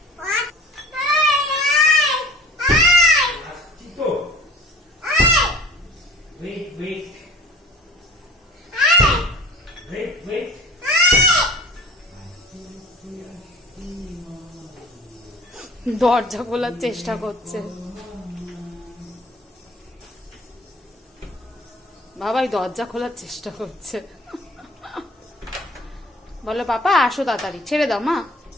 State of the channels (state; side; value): normal; both; correlation 0.45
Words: দরজা খোলার চেষ্টা করছে বাবাই, দরজা খোলার চেষ্টা করছে। বলো পাপা আসো তাড়াতাড়ি, ছেড়ে দাও মা।